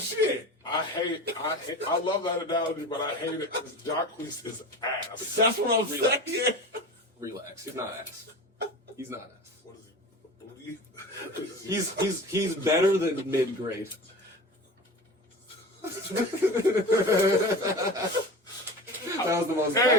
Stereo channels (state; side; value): normal; both; correlation 0.32